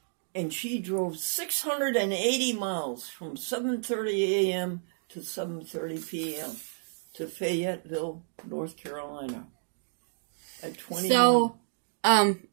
And she drove 680 miles from 7:30 a.m. to 7:30 p.m. to Fayetteville, North Carolina at 21. So, I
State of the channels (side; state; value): left; silent; digital silence